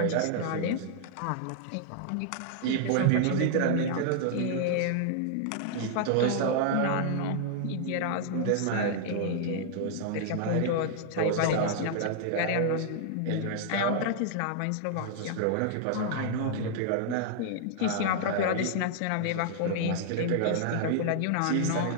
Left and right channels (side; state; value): both; different; correlation -0.01